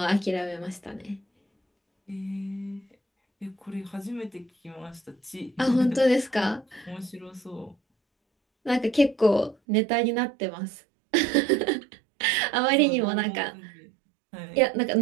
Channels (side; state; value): left; drops out; at 9.6 s